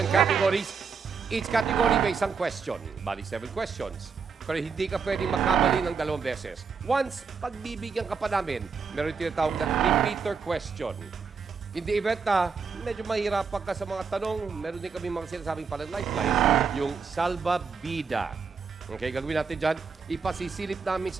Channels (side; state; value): left; quieter; 5.6 dB